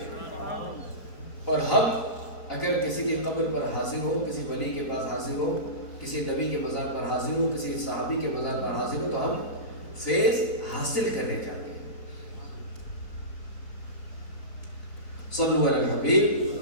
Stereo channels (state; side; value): late; right; 3.9 ms